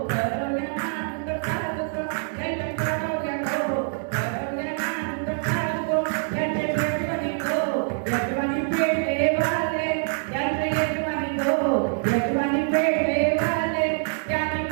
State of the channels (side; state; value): left; silent; digital silence